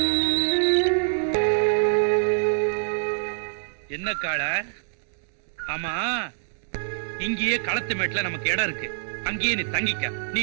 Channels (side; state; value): left; silent; digital silence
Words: என்ன கால? ஆமா, இங்கேயே களத்து மேட்ல நமக்கு இடம் இருக்கு. அங்கேயே நீ தங்கிக்க. நீ